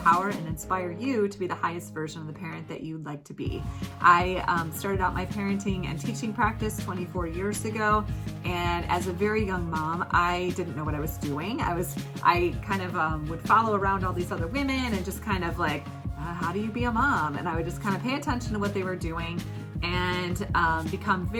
and inspire you to be the highest version of the parent that you'd like to be. I started out my parenting and teaching practice 24 years ago, and as a very young mom, I didn't know what I was doing. I kind of would follow around all these other women and just kind of like, how do you be a mom? And I would just kind of pay attention to what they were doing and become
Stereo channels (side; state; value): both; identical; correlation 1.00